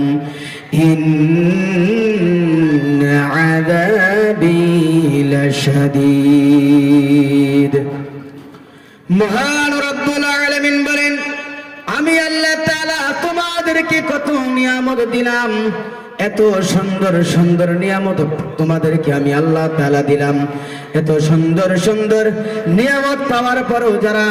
ইন্না আযাবি লাশাদীদ। মহান রব্বুল আলামিন বলেন, আমি আল্লাহ তাআলা তোমাদেরকে কত নিয়ামত দিলাম, এত সুন্দর সুন্দর নিয়ামত তোমাদেরকে আমি আল্লাহ তাআলা দিলাম। এত সুন্দর সুন্দর নিয়ামত পাওয়ার পরও যারা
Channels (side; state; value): both; identical; correlation 1.00